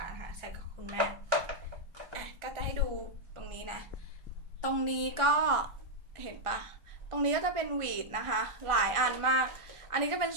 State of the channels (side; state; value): left; late; 1.4 ms